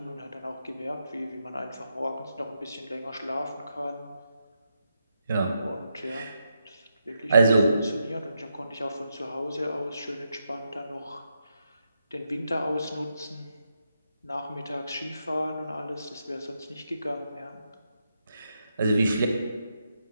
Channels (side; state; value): both; inverted; correlation -0.84